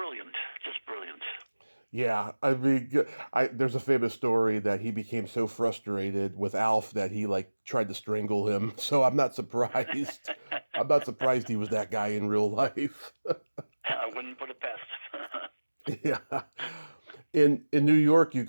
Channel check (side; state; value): both; inverted; correlation -1.00